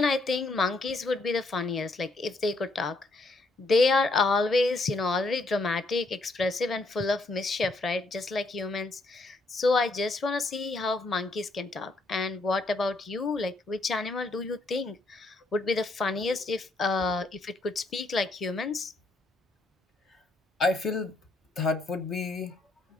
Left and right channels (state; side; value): quieter; right; 3.0 dB